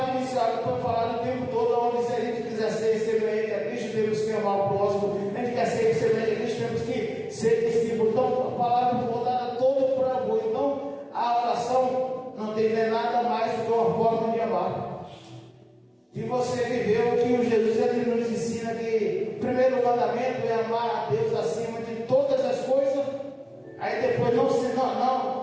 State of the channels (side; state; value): both; identical; correlation 1.00